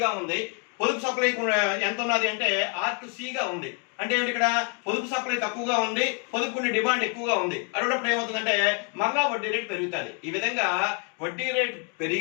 ఉంది. పొదుపు సప్లై ఎంత ఉన్నది అంటే R2Cగా ఉంది. అంటే ఏమిటి, ఇక్కడ పొదుపు సప్లై తక్కువగా ఉంది, పొదుపు ఉండే డిమాండ్ ఎక్కువగా ఉంది. అటువంటిప్పుడు ఏమవుతుందంటే మళ్ళా వడ్డీ రేటు పెరుగుతుంది. ఈ విధంగా వడ్డీ రేటు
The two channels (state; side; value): quieter; right; 36.9 dB